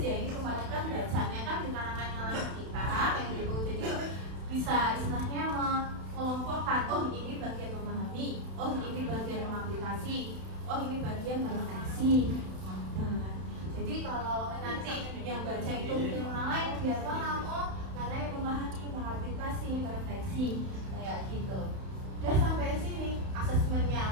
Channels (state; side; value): late; left; 31 ms